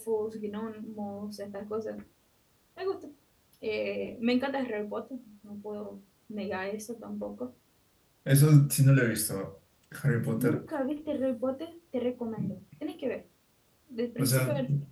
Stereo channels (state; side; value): identical; both; correlation 1.00